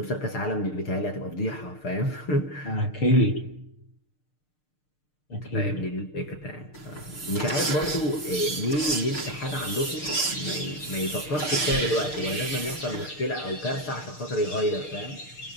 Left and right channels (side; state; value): right; late; 6.6 ms